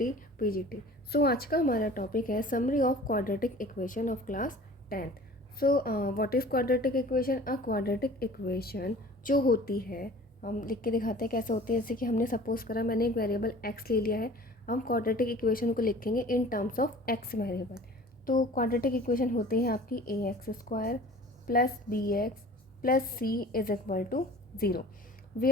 PGT. So आज का हमारा topic है summary of quadratic equation of class 10th। So what is quadratic equation? A quadratic equation जो होती है, हम लिख के दिखाते हैं कैसे होती है। जैसे कि हमने सपोज करा, मैंने एक वेरिएबल x ले लिया है, हम क्वाड्रेटिक इक्वेशन को लिखेंगे in terms of x variable. तो क्वाड्रेटिक इक्वेशन होती है आपकी ax² plus bx plus c is equal to 0,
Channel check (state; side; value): normal; both; correlation 0.45